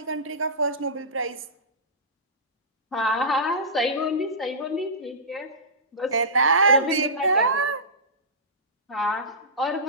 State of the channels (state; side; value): normal; both; correlation -0.20